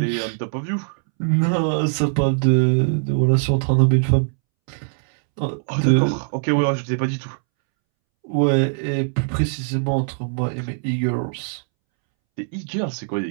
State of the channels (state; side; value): silent; left; 65 dB below the other